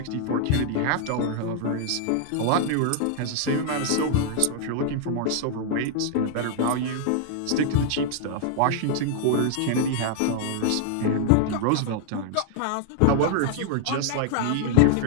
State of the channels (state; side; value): different; both; correlation 0.00